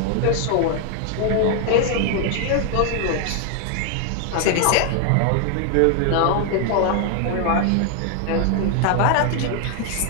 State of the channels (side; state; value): both; different; correlation 0.00